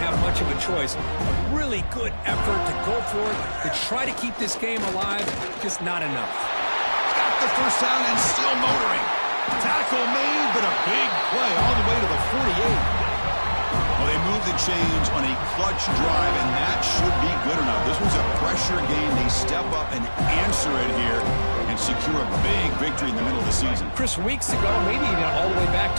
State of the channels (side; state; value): both; inverted; correlation -1.00